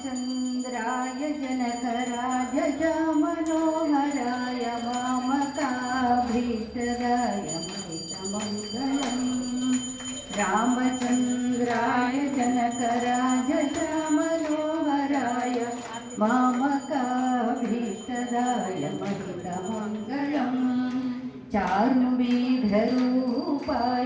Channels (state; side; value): identical; both; correlation 1.00